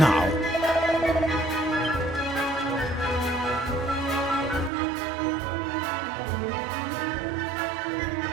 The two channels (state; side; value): drops out; left; at 4.7 s